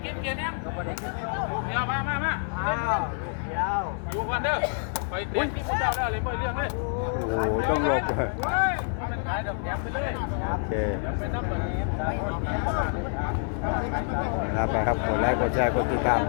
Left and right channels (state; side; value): silent; right; 60 dB below the other